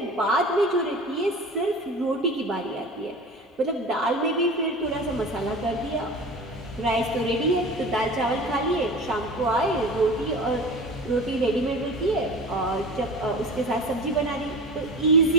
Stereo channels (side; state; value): both; normal; correlation 0.34